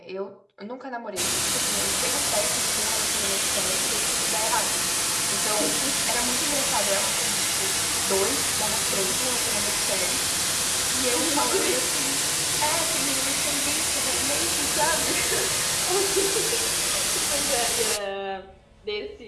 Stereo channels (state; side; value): identical; both; correlation 1.00